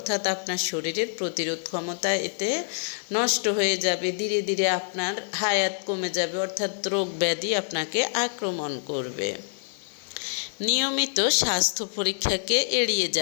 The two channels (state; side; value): silent; right; 57 dB below the other